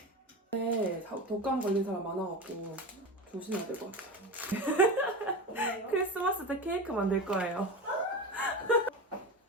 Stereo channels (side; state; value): both; normal; correlation 0.25